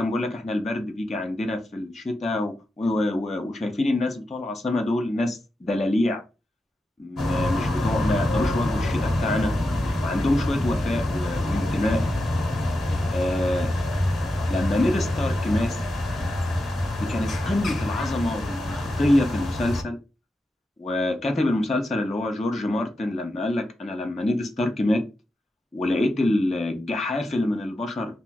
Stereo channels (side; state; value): both; normal; correlation 0.89